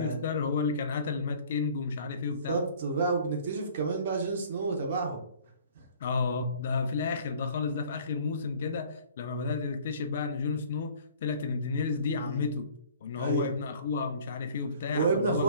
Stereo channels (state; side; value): inverted; both; correlation -0.51